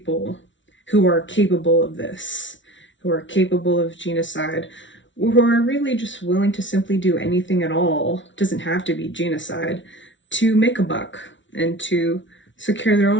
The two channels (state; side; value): late; right; 0.55 ms